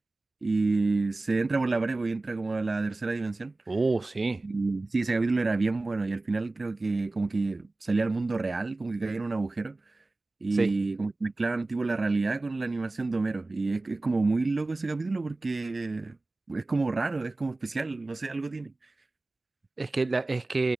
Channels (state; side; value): quieter; left; 3.1 dB